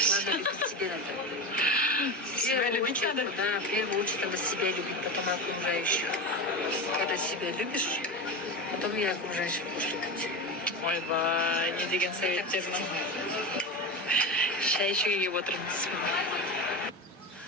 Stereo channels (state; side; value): normal; both; correlation 0.21